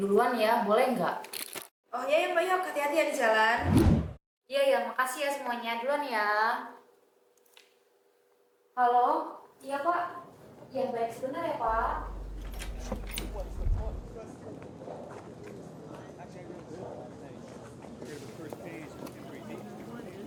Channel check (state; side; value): identical; both; correlation 1.00